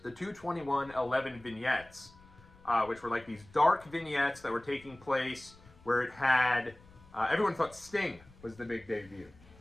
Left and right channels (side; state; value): left; noise; rumble, 24 dB below the sound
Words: the 2/21/11 vignettes, which were like these dark vignettes that were taking place where it had, everyone thought Sting was the big debut.